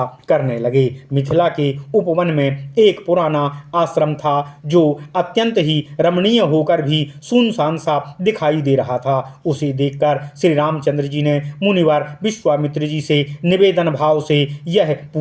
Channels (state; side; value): identical; both; correlation 1.00